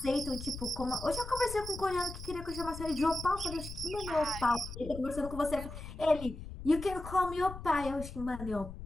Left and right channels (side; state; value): left; noise; rumble, 10 dB below the sound